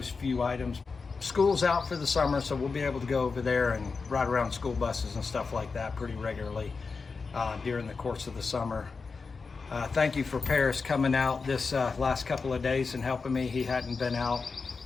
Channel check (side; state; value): right; quieter; 4.7 dB